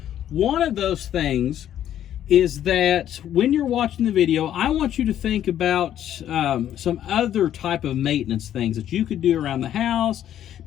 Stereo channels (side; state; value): right; quieter; 11.0 dB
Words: One of those things is that when you're watching the video, I want you to think about some other type of maintenance things that you could do around the house.